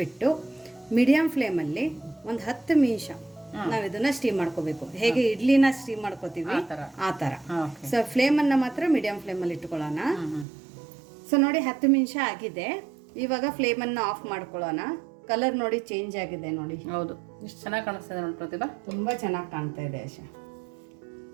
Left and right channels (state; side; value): drops out; left; at 10.5 s